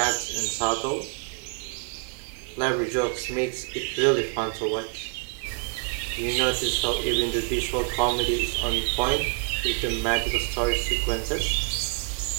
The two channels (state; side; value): quieter; left; 35.7 dB